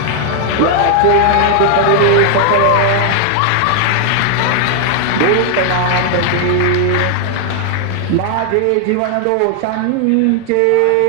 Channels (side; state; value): both; different; correlation 0.00